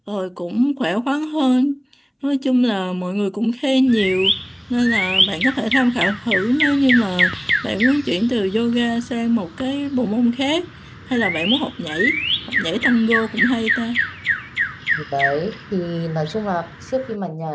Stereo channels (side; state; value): both; identical; correlation 1.00